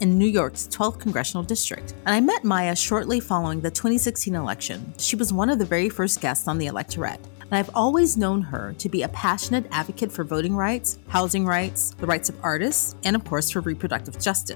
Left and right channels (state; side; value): silent; right; digital silence